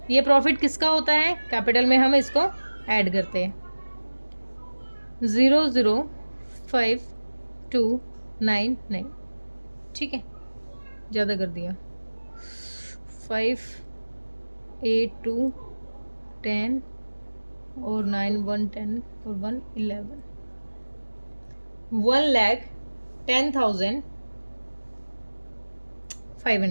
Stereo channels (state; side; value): inverted; both; correlation -1.00